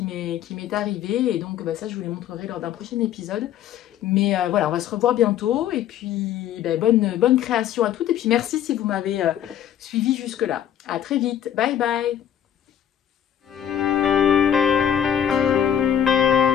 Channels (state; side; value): quieter; right; 10.1 dB